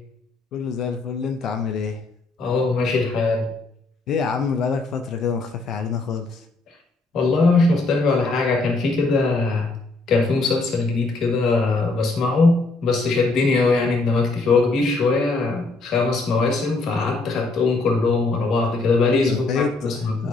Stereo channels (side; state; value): right; quieter; 3.4 dB